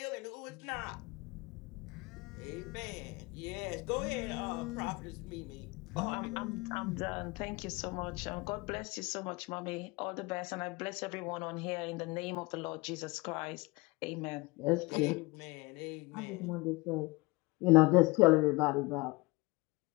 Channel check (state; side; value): quieter; right; 24.5 dB